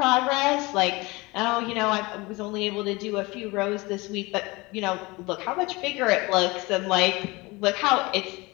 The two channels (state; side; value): quieter; right; 23.5 dB